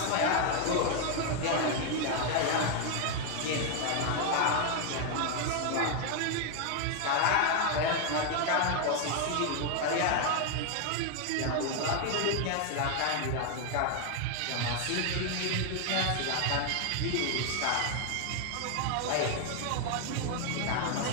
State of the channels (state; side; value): different; both; correlation 0.00